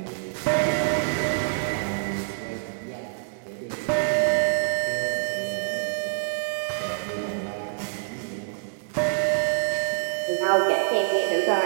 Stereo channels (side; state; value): left; silent; digital silence